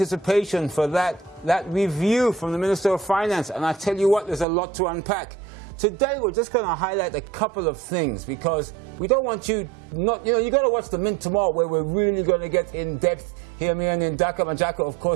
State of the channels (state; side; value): drops out; left; at 4.5 s